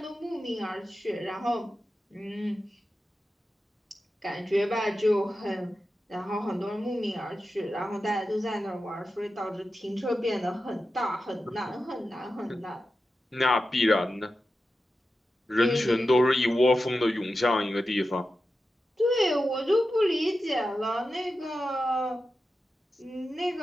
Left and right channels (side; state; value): both; normal; correlation 0.91